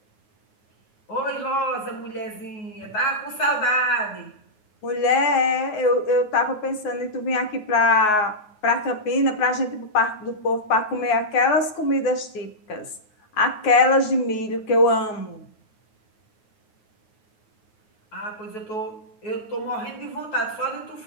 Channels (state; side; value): late; right; 9.4 ms